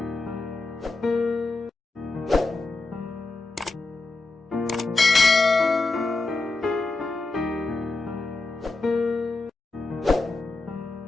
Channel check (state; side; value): quieter; right; 3.5 dB